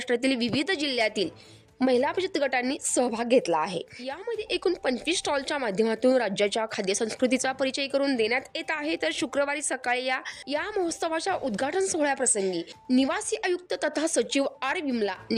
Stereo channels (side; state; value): both; identical; correlation 1.00